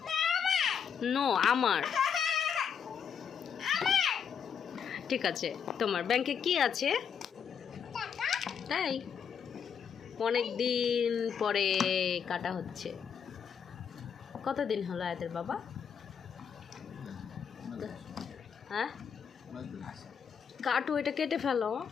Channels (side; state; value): right; quieter; 7.3 dB